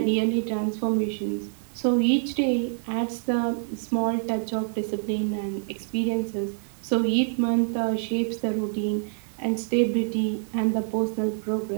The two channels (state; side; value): silent; left; 61 dB below the other